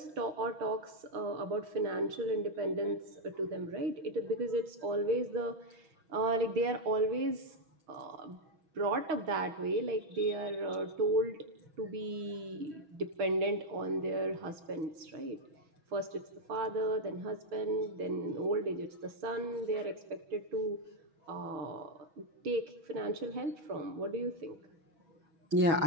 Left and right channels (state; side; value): late; left; 6.3 ms